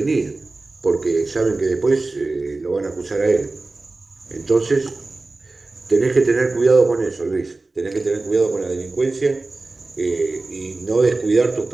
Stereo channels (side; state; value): left; quieter; 3.3 dB